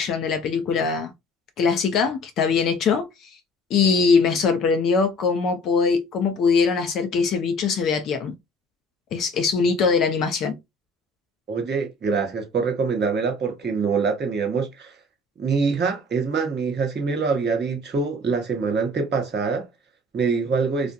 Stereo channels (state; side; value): normal; both; correlation 0.50